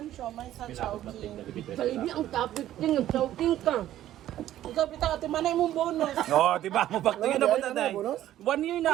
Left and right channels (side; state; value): left; quieter; 12.9 dB